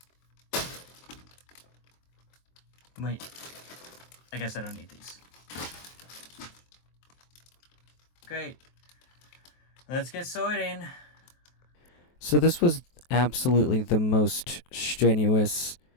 Wait. I guess I don't need these. great. Let's get sorting. So this was absolutely the most strenuous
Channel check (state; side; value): late; right; 23 ms